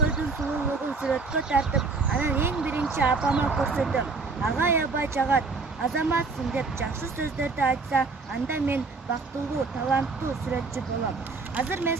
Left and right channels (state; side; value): quieter; left; 4.2 dB